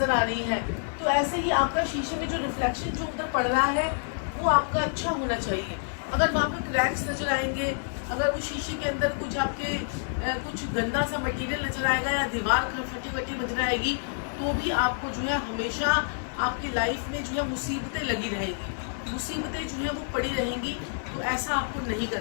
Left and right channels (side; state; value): right; silent; 55 dB below the other